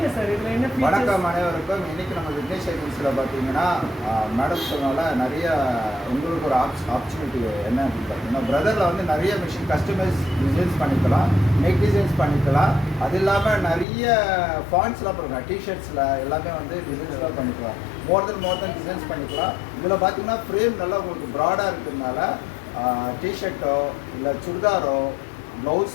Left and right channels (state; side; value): drops out; right; at 13.9 s